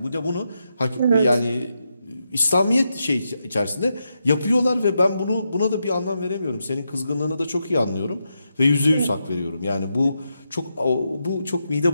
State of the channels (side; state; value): both; inverted; correlation -0.84